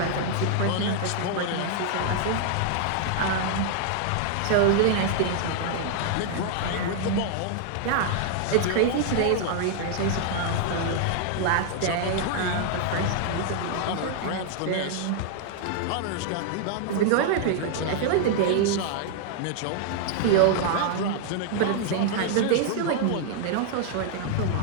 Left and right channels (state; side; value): different; both; correlation 0.00